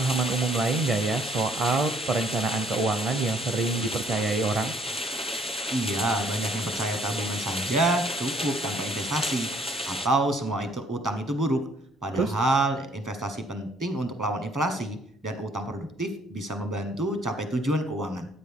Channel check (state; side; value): normal; both; correlation 0.63